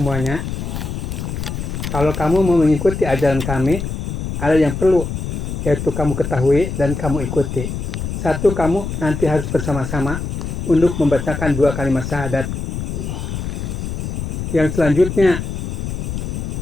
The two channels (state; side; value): noise; left; rumble, 4 dB below the sound